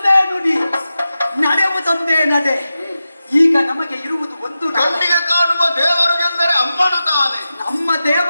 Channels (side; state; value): both; inverted; correlation -0.92